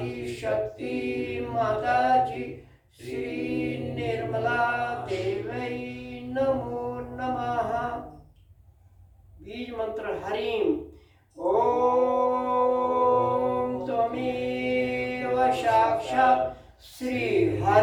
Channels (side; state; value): both; identical; correlation 1.00